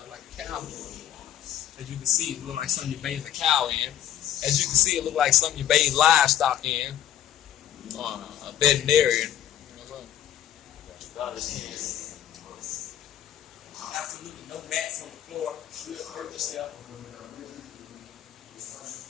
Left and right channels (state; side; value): quieter; right; 11.2 dB